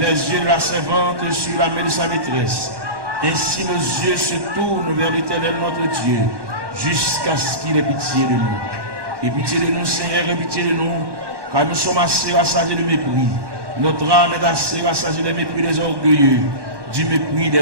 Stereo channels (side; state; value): left; late; 1.1 ms